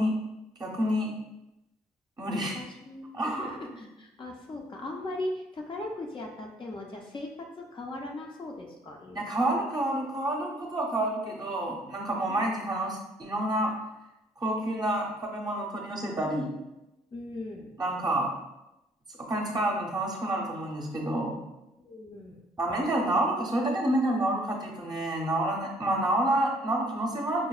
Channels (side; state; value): both; normal; correlation 0.61